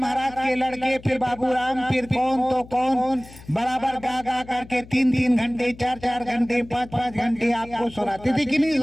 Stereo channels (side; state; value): left; noise; hum, 19 dB below the sound